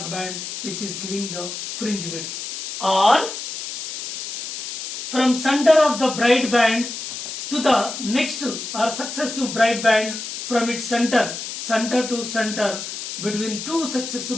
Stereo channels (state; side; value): noise; left; hiss, 7 dB below the sound